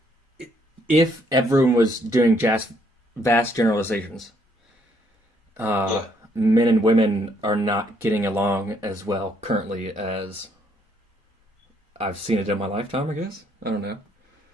if everyone was doing vast generalizations, men and women are not getting along as well currently as I've seen it in my lifetime, I guess. I don't know.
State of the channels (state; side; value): normal; both; correlation 0.70